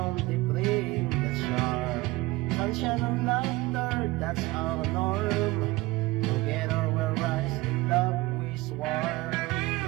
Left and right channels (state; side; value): quieter; left; 20.7 dB